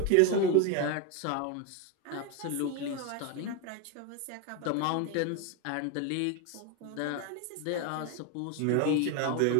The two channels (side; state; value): both; different; correlation 0.02